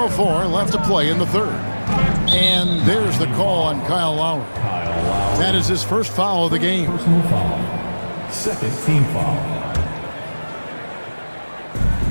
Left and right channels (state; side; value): inverted; both; correlation -1.00